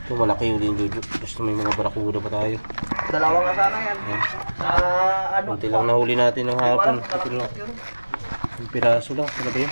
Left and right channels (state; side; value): inverted; both; correlation -1.00